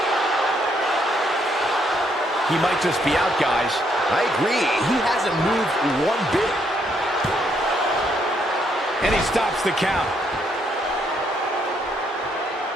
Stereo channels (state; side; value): normal; both; correlation 0.73